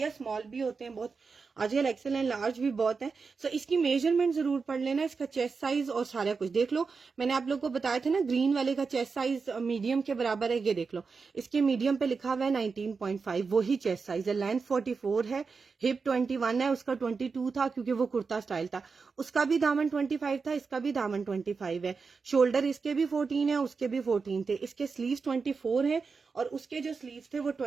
स्मॉल भी होते हैं बहुत, आजकल एक्सेल एंड लार्ज भी बहुत है। सो इसकी मेजरमेंट जरूर पढ़ लेना, इसका चेस्ट साइज और सारा कुछ देख लो। मैंने आप लोग को बताया था ना ग्रीन वाले का चेस्ट साइज मीडियम के बराबर है, ये देख लो। इसके मीडियम पे लिखा हुआ है 19.5, वही चेस्ट साइज है। लेंथ 44 है, हिप 21 है, उसका 22 था क्योंकि वो कुर्ता स्टाइल था। उसका भी दामन 25 था, इसका भी दामन 25 है। शोल्डर इसके भी 14 है, उसके भी 14 थे। इसके स्लीव्स 24 है और उसके जो स्लीव्स थे वो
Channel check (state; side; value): quieter; left; 4.9 dB